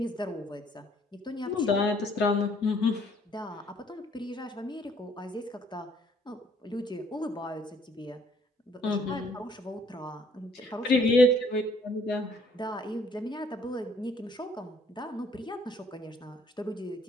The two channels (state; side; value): normal; both; correlation 0.62